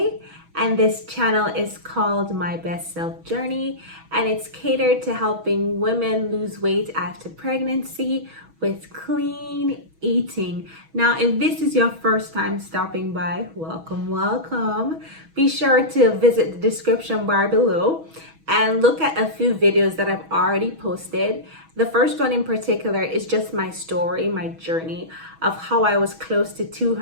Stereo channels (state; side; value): late; left; 6.2 ms